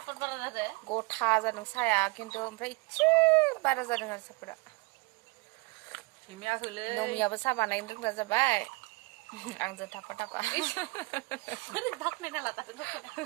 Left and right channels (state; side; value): quieter; left; 26.9 dB